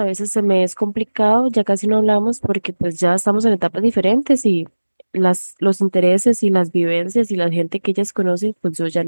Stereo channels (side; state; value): both; inverted; correlation -1.00